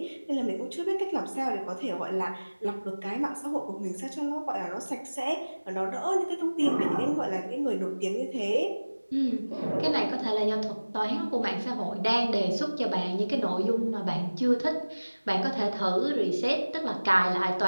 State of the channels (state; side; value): inverted; both; correlation -1.00